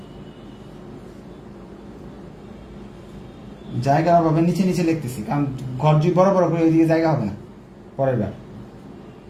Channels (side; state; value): both; identical; correlation 1.00